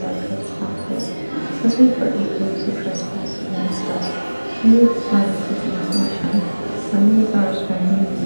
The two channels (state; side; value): inverted; both; correlation -1.00